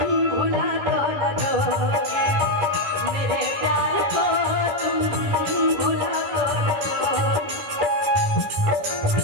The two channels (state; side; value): late; left; 11 ms